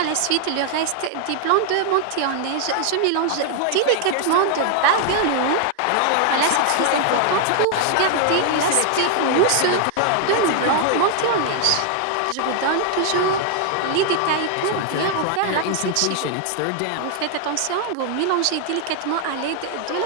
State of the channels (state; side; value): different; both; correlation 0.00